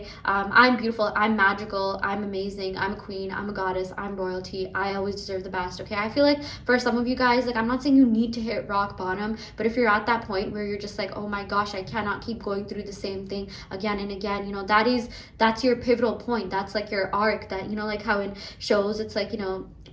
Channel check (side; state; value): both; identical; correlation 1.00